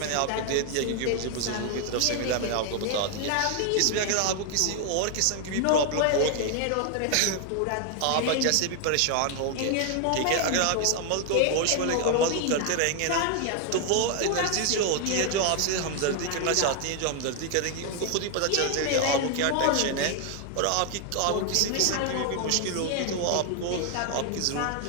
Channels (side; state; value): both; different; correlation 0.00